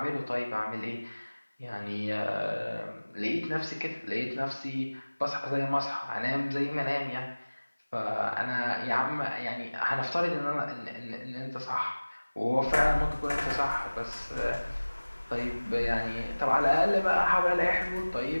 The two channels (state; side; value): inverted; both; correlation -1.00